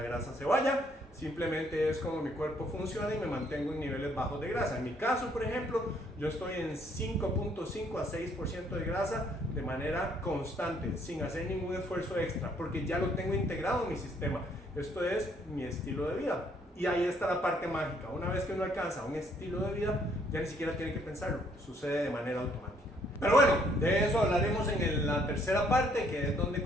grasa se vaya. Simplemente es como mi cuerpo funciona y me mantengo en niveles bajos de grasa. En mi caso, por ejemplo, yo estoy en 5.5 a 6% de grasa de manera constante, sin hacer ningún esfuerzo extra, porque ya lo tengo integrado en mi sistema. Esto es mi estilo de vida. Y ahí está la parte mágica. Una vez que uno alcanza un estilo de vida, ya ni siquiera tiene que pensarlo, sucede de manera automática. Pero bueno, de eso hablaremos en la tercera parte, que es donde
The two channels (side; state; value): both; normal; correlation 0.66